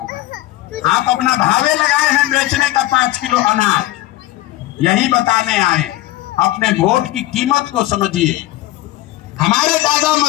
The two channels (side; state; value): right; quieter; 16.5 dB